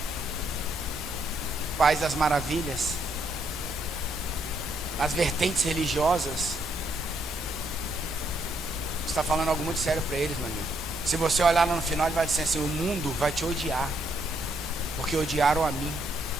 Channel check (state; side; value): normal; both; correlation 0.74